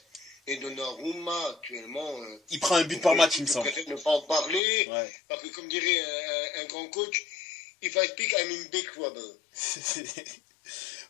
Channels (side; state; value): right; drops out; at 4.6 s